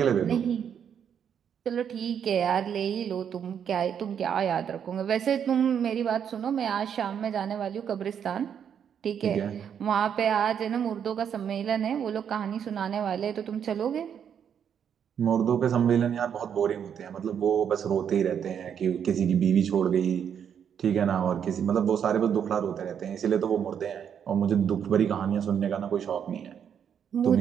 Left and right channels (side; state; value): left; quieter; 8.2 dB